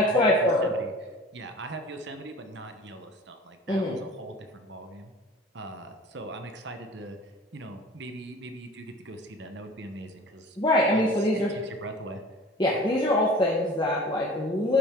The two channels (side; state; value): both; normal; correlation 0.42